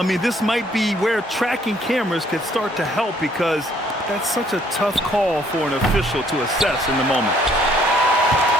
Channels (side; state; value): both; normal; correlation 0.64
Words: mean, this might be where tracking cameras could start to help because that's such a tough call for an official to assess in the moment.